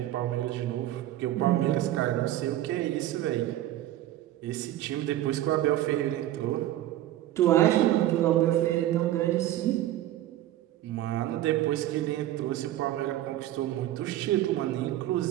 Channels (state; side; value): quieter; left; 13.9 dB